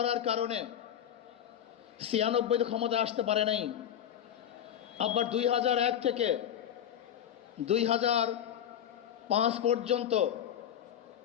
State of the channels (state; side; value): quieter; right; 9.9 dB